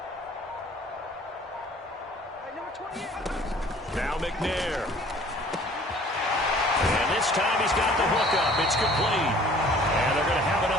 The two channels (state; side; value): normal; both; correlation 0.52